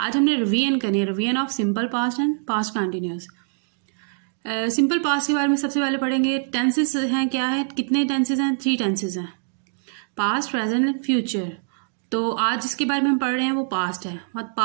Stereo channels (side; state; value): left; silent; digital silence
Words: आज हमने रिवीजन करनी है, revision of simple past and past continuous. Simple past के बारे में सबसे पहले पढ़ेंगे। टेंसेस हैं, क्या है, कितने टेंसेस हैं? 3 टेंसेस हैं, पास्ट, प्रेजेंट एंड फ्यूचर। तो आज जिसके बारे में हम पढ़ रहे हैं वो पास्ट है, मतलब